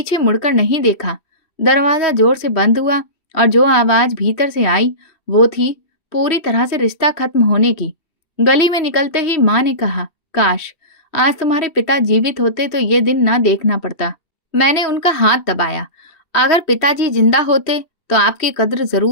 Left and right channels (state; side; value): late; right; 2.7 ms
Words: मुड़कर नहीं देखा। दरवाजा जोर से बंद हुआ और जो आवाज भीतर से आई वो थी पूरी तरह से रिश्ता खत्म होने की। गली में निकलते ही माँ ने कहा, काश आज तुम्हारे पिता जीवित होते तो ये दिन ना देखना पड़ता। मैंने उनका हाथ दबाया। अगर पिताजी जिंदा होते तो आपकी कद्र